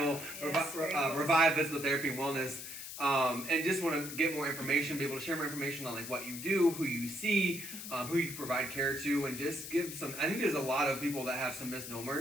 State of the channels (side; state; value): left; noise; hiss, 9 dB below the sound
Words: Yes, Revive Physical Therapy and Wellness. And just want to get more information, be able to share more information on like what you do, who you see, who you provide care to, and just give some. I think there's a lot of people that have some